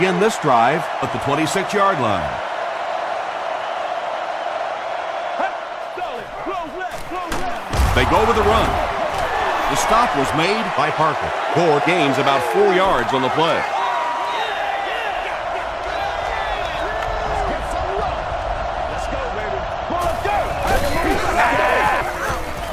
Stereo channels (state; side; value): identical; both; correlation 1.00